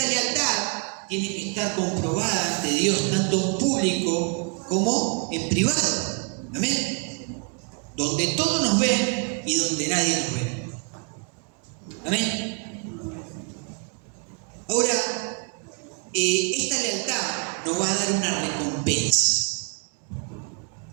lealtad tiene que estar comprobada ante Dios, tanto en público como en privado. Amén. Donde todos nos ven y donde nadie nos ve. Amén. Ahora, esta lealtad nos va a dar una recompensa.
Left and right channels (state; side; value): quieter; left; 36.3 dB